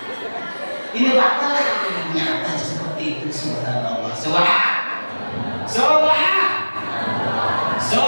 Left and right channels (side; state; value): both; inverted; correlation -1.00